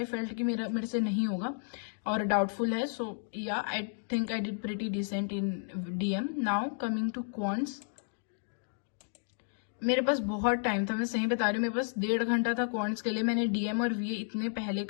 felt कि मेरे से नहीं होगा और डाउटफुल है. So yeah I think I did pretty decent in DM. Now coming to quants, मेरे पास बहुत टाइम था, मैं सही बता रही हूँ. मेरे पास 1.5 घंटा था क्वांट्स के लिए. मैंने DM और VA इतने पहले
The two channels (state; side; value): silent; right; digital silence